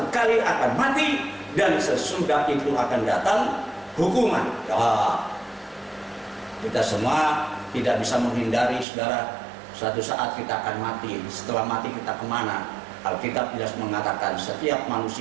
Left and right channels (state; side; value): drops out; left; at 8.8 s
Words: kali akan mati, dan sesudah itu akan datang hukuman. Ya, kita semua tidak bisa menghindari, saudara, suatu saat kita akan mati. Setelah mati kita kemana? Alkitab jelas mengatakan setiap